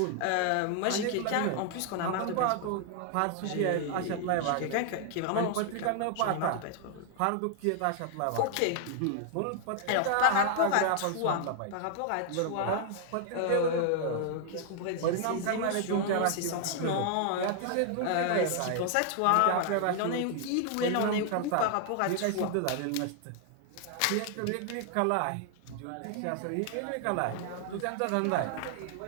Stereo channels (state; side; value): different; both; correlation 0.00